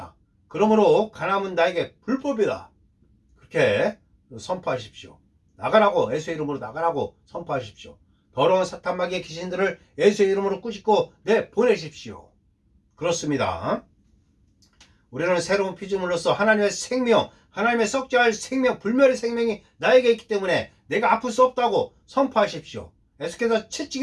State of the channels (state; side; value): identical; both; correlation 1.00